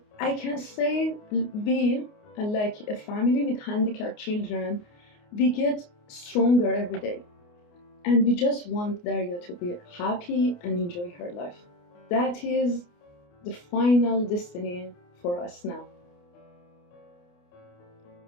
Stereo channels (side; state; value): right; late; 29 ms